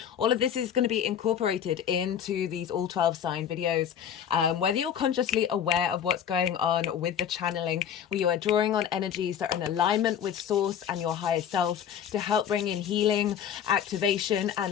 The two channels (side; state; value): right; quieter; 8.9 dB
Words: All of this is going to be incorporated into these all 12 sign videos. Whether you're consciously aware of what's going on with the channeling, where you are drawing on energies that are in alignment with source and your higher self to help bring in healing, activation